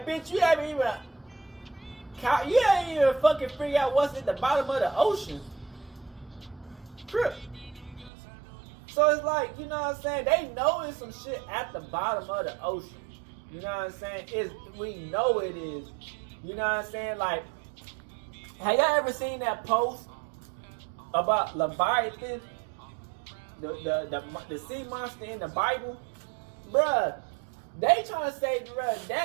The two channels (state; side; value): drops out; left; at 8.1 s